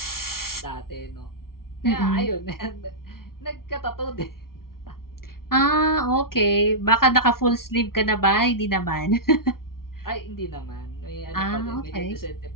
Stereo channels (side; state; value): right; late; 0.93 ms